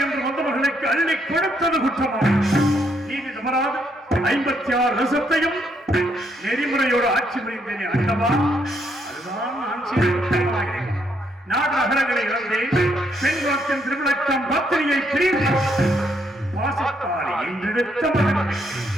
என்று வந்தவர்களுக்கு அள்ளி கொடுத்தது குற்றமாக நீதி தவறாது 56 வருஷத்தையும் நெறிமுறையோடு ஆட்சி புரிந்தேனே ஆண்டவா, அதுதான் நான் செய்த குற்றமாகிறேன். நாடு நகரங்களை இழந்தேன். பெண்குலத்தின் திருவிழக்கம் பத்திரியை பிரிந்து வாசத்தாலே என்றெடுத்த மகன்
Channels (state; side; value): normal; both; correlation 0.74